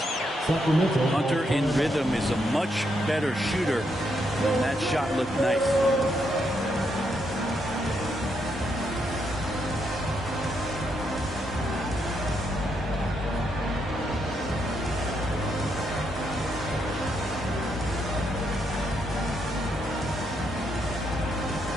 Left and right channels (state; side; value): normal; both; correlation 0.78